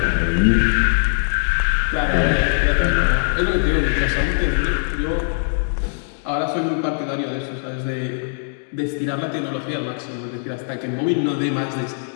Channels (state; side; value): silent; right; digital silence